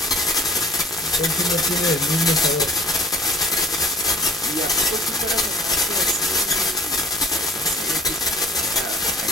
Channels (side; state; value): both; normal; correlation 0.50